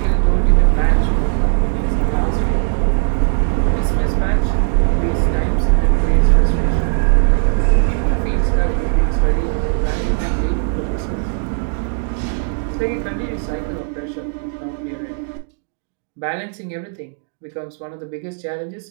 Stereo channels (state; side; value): silent; left; digital silence